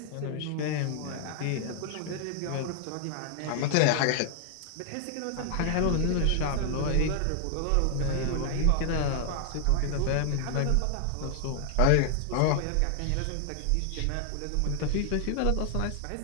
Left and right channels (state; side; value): different; both; correlation 0.00